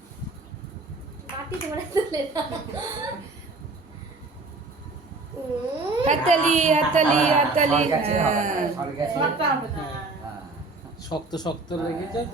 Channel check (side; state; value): left; quieter; 3.4 dB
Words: হাততালি হাততালি হাততালি। শক্ত শক্ত লেগে যায়